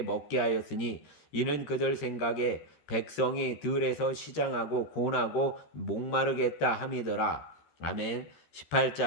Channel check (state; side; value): late; right; 13 ms